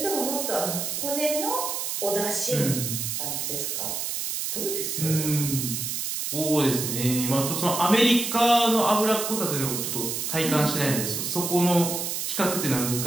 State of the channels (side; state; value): right; noise; hiss, 2 dB below the sound